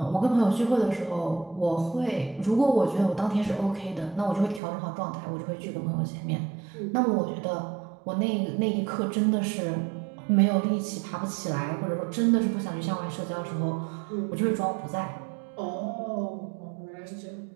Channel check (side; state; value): left; drops out; at 4.6 s